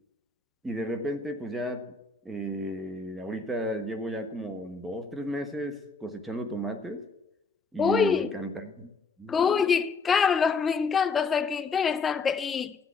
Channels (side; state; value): right; quieter; 4.5 dB